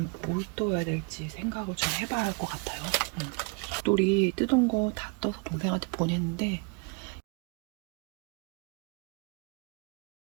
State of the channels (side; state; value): left; quieter; 33.6 dB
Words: 뭘 떠야 될지 생각을 좀 해봐야 할 것 같아요. 똘이 뜯은 거 다 떠서 동생한테 보냈는데